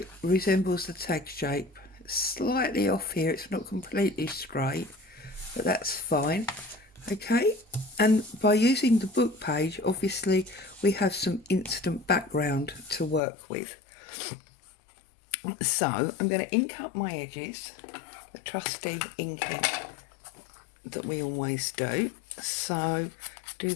resembles the tag shape. Slightly off here, it's not completely straight, but that's fine. Okay, and by using the book page, obviously we have some instant background to work with. So I'm going to ink up my edges, the trusty inking that we always do. So do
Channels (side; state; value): right; drops out; at 13.2 s